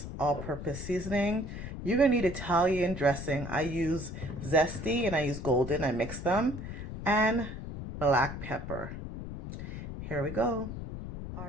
all-purpose seasoning. You're gonna need Italian dressing. I use zesty and I use golden, I mix them, and black pepper. Here we go.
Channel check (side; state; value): left; noise; rumble, 8 dB below the sound